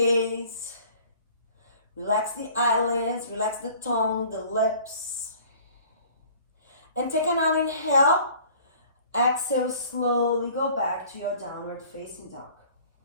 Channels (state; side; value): inverted; both; correlation -0.51